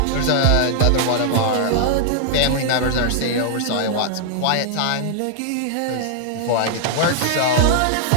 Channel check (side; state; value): both; different; correlation -0.01